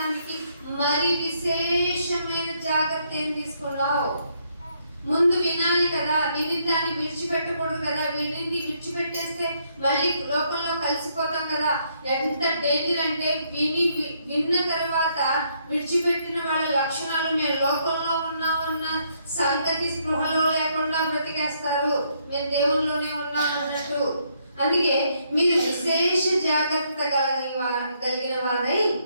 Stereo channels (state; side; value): inverted; both; correlation -0.72